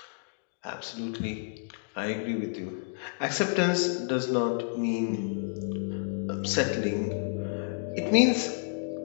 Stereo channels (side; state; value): right; silent; digital silence